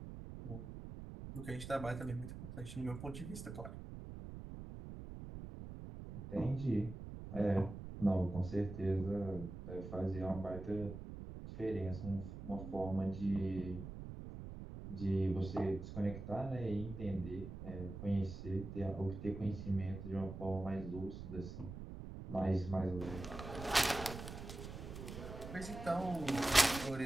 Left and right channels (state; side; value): noise; right; rumble, 9 dB below the sound